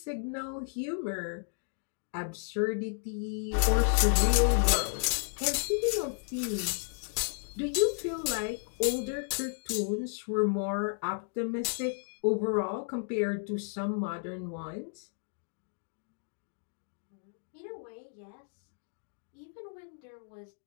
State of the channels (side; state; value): right; silent; digital silence